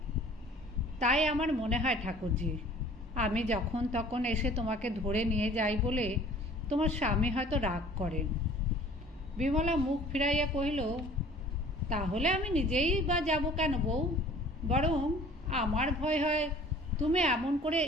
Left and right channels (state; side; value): normal; both; correlation 0.50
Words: তাই আমার মনে হয় ঠাকুরজি, আমি যখন তখন এসে তোমাকে ধরে নিয়ে যাই বলে তোমার স্বামী হয়তো রাগ করেন। বিমলা মুখ ফিরাইয়া কহিল, তাহলে আমি নিজেই বা যাব কেন বউ? বরং আমার ভয় হয় তুমি এমন করে